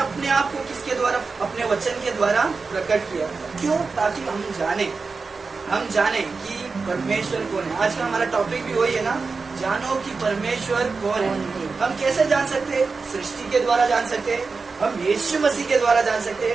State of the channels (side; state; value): left; quieter; 4.4 dB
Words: आप को किसके द्वारा? अपने वचन के द्वारा प्रकट किया। क्यों? ताकि हम जाने कि परमेश्वर कौन है। आज का हमारा टॉपिक भी वही है ना, जानो कि परमेश्वर कौन है। हम कैसे जान सकते हैं? सृष्टि के द्वारा जान सकते हैं, हम यीशु मसीह के द्वारा जान सकते